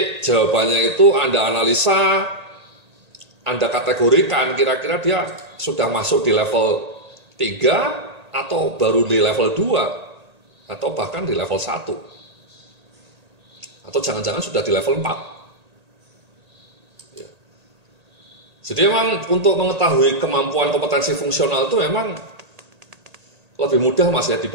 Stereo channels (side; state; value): left; late; 1.8 ms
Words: jawabannya itu Anda analisa, Anda kategorikan kira-kira dia sudah masuk di level 3 atau baru di level 2 atau bahkan di level 1 atau jangan-jangan sudah di level 4 ya. Jadi memang untuk mengetahui kemampuan kompetensi fungsional itu memang lebih mudah Mas ya